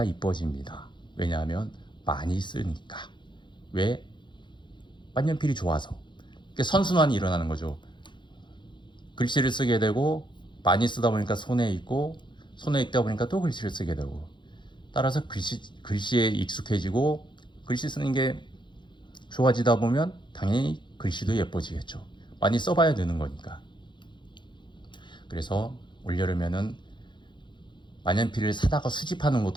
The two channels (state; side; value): late; right; 0.23 ms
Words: 이뻐집니다. 왜냐하면 많이 쓰니까. 왜? 만년필이 좋아서. 선순환이 일어나는 거죠. 글씨를 쓰게 되고, 많이 쓰다 보니까 손에 있고, 손에 있다 보니까 또 글씨를 쓰게 되고, 따라서 글씨에 익숙해지고, 글씨 쓰는 게 좋아지다 보면 당연히 글씨도 예뻐지겠죠. 많이 써봐야 되는 거니까. 그래서 올여름에는 만년필을 사다가 수집하는